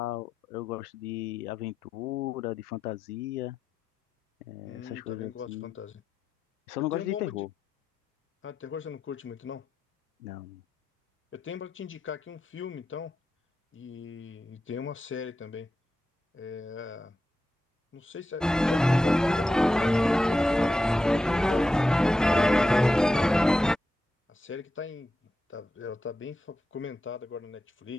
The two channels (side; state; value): both; normal; correlation 0.90